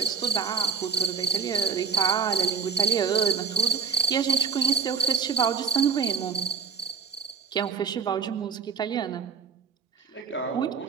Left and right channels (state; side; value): quieter; left; 5.5 dB